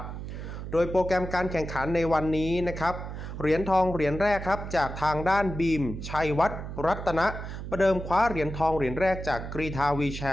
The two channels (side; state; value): right; noise; hum, 8 dB below the sound